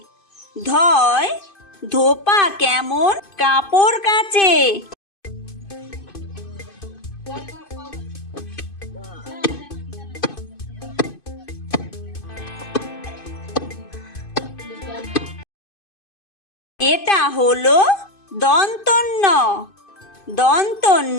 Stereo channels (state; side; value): late; right; 2.5 ms